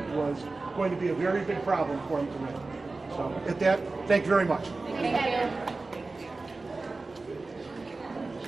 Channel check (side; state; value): left; quieter; 3.5 dB